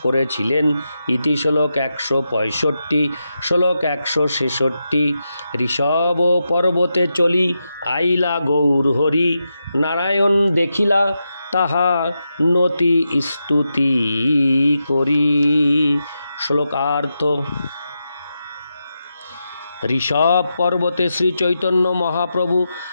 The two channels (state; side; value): inverted; both; correlation -0.87